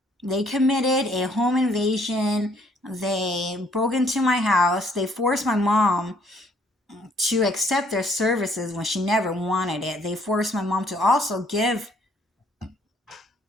They broke into my house. They forced my mom to accept their services when she never wanted it. They forced my mom to also give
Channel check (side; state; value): both; normal; correlation 0.64